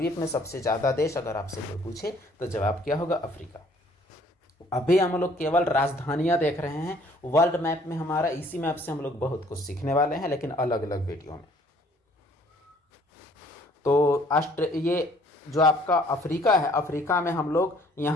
में सबसे ज़्यादा देश अगर आपसे कोई पूछे तो जवाब क्या होगा? अफ्रीका। अभी हम लोग केवल राजधानियां देख रहे हैं। वर्ल्ड मैप में हमारा, इसी मैप से हम लोग बहुत कुछ सीखने वाले हैं, लेकिन अलग अलग वीडियो में। तो ये जो आपका अफ्रीका है, अफ्रीका में हम लोग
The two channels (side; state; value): both; normal; correlation 0.59